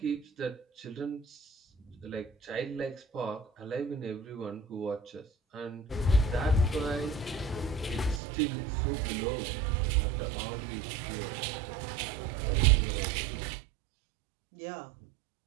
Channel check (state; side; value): drops out; left; at 8.2 s